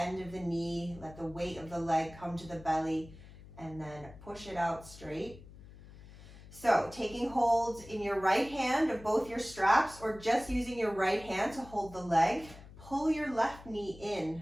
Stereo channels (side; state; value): left; noise; hum, 18 dB below the sound